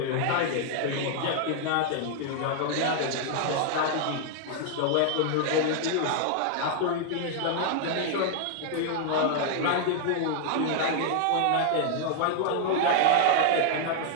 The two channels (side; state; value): both; different; correlation 0.00